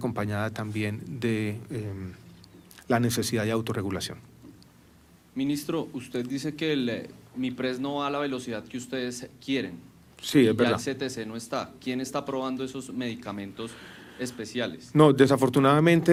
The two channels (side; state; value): both; identical; correlation 1.00